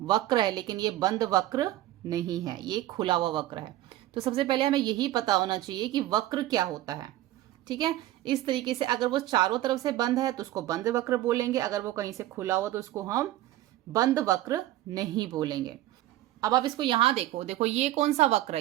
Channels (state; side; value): quieter; left; 15.0 dB